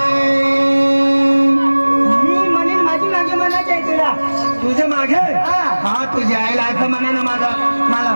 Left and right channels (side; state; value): both; inverted; correlation -1.00